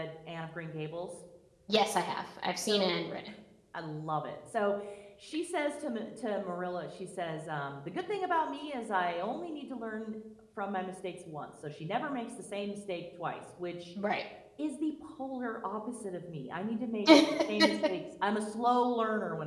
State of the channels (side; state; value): both; identical; correlation 1.00